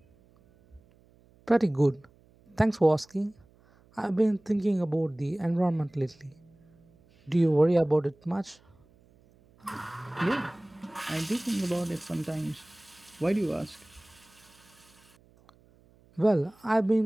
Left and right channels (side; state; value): right; noise; hum, 30 dB below the sound